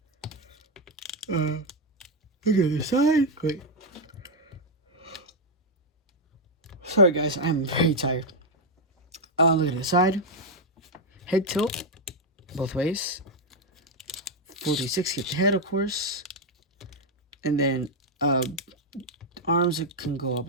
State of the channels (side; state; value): both; normal; correlation 0.01